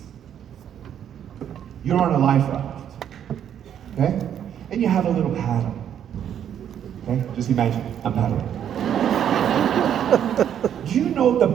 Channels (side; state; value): left; quieter; 9.5 dB